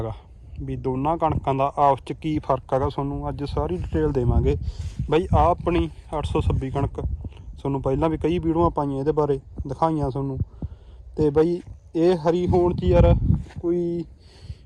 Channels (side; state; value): both; identical; correlation 1.00